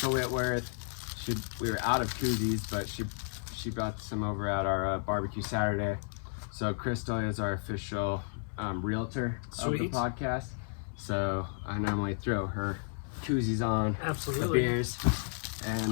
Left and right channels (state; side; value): silent; right; 56 dB below the other